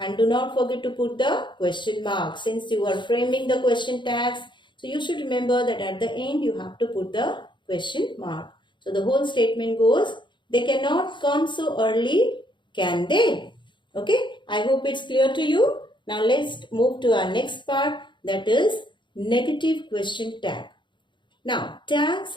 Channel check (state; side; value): late; right; 0.23 ms